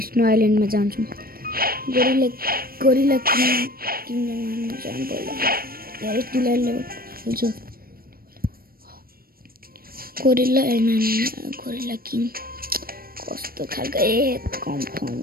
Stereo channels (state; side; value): late; left; 0.43 ms